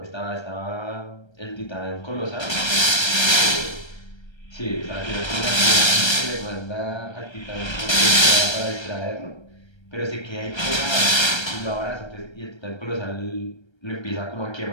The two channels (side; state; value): right; late; 1.3 ms